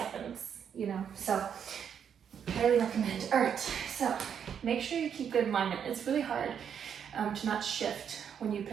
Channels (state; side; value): quieter; left; 8.0 dB